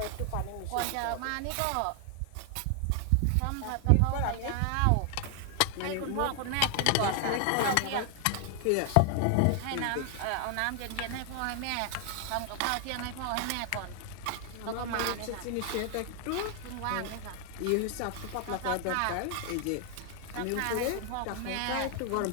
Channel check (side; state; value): both; different; correlation 0.00